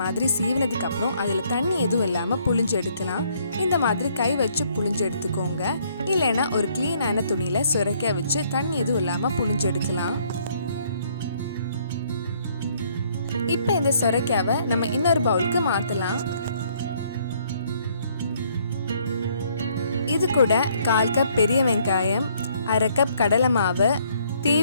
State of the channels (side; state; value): both; inverted; correlation -0.66